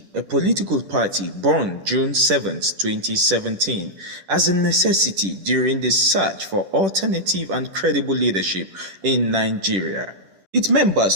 a political party born June 7, 2017, as a necessity during the search for alternative and credible leadership in Nigeria. Its members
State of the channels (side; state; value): left; late; 10 ms